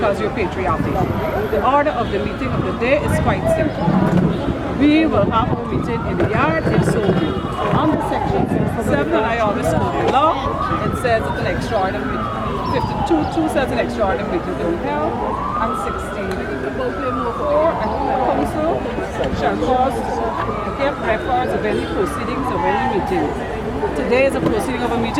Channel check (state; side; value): identical; both; correlation 1.00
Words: you're patriotic. The order of the meeting of the day is quite simple. We will have our meeting in the yard if so be. Under section 67, and I always quote the law, it says it's an extraordinary 52 says an extraordinary meeting to be held, and 16. Or a council shall cause to give records of any proceedings of any meeting. Today is a proceeding of a